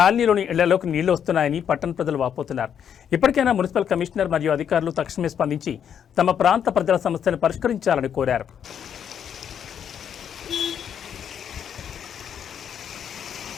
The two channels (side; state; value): right; quieter; 8.5 dB